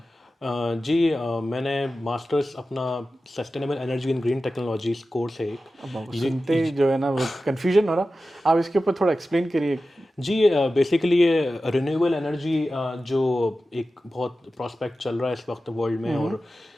मैंने मास्टर्स अपना sustainable energy in green technologies course है एक। सुनते ही जो है ना वो कन्फ्यूजन हो रहा, आप इसके ऊपर थोड़ा एक्सप्लेन करिए। जी, बेसिकली ये रिन्यूएबल एनर्जी जो एक बहुत प्रॉस्पेक्ट चल रहा है इस वक्त वर्ल्ड में और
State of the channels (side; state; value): both; normal; correlation 0.94